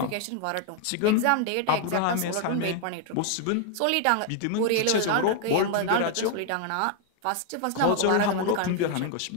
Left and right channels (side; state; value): both; different; correlation 0.00